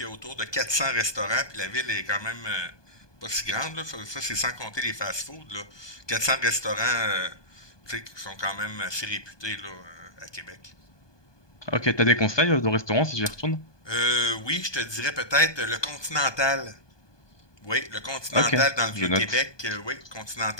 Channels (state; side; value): late; right; 1.2 ms